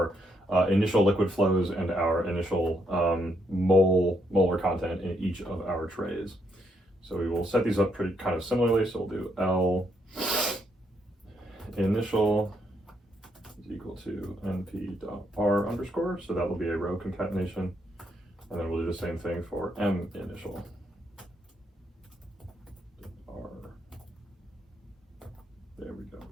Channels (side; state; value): both; normal; correlation 0.76